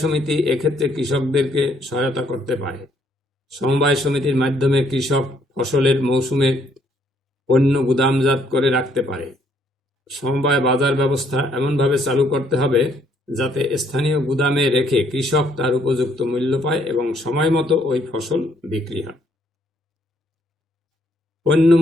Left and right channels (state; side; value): normal; both; correlation 0.68